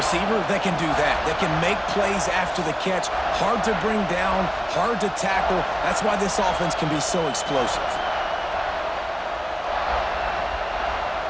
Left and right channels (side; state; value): both; identical; correlation 1.00